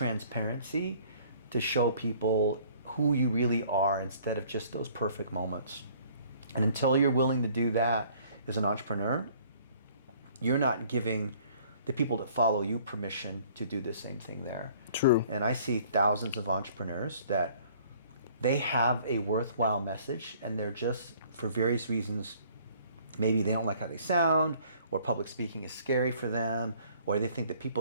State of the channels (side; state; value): both; inverted; correlation -0.56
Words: to show people who you really are instead of just those perfect moments. And until you're willing to do that as an entrepreneur, you're not giving the people that follow you permission to do the same thing there. True. And I see thousands of entrepreneurs that they have a worthwhile message and they're just, for various reasons, maybe they don't like how they sound, or public speaking is scary for them, or they think the